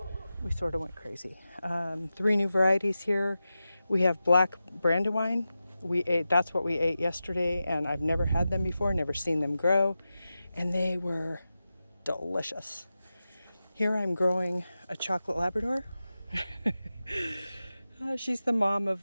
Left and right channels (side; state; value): both; inverted; correlation -0.93